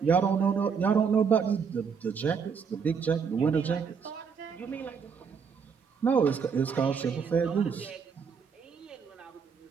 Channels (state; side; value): quieter; left; 6.2 dB